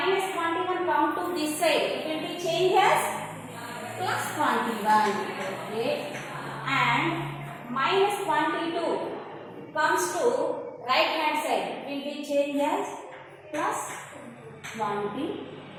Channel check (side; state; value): both; identical; correlation 1.00